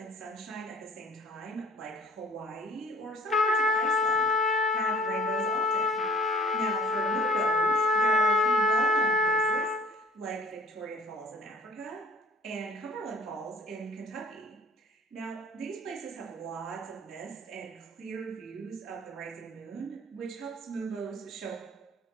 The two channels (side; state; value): both; normal; correlation 0.51